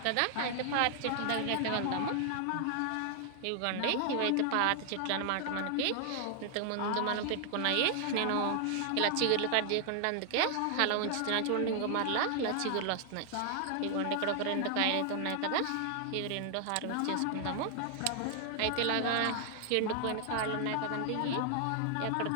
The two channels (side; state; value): both; different; correlation 0.00